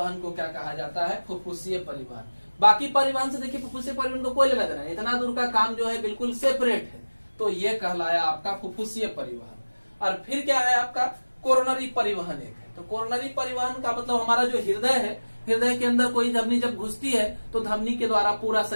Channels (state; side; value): inverted; both; correlation -1.00